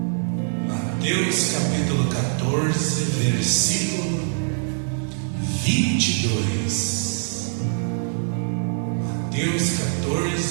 Mateus capítulo 14, versículo 22. Mateus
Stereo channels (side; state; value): left; silent; 63 dB below the other